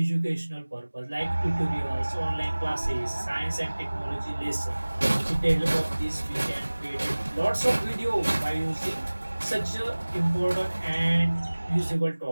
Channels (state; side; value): inverted; both; correlation -1.00